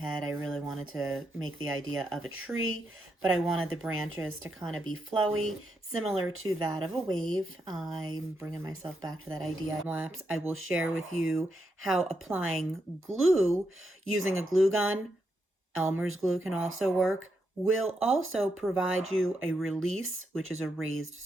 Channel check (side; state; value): both; normal; correlation 0.82